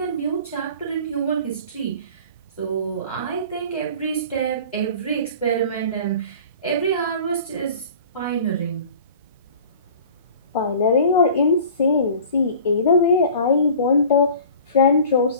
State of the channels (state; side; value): inverted; both; correlation -0.43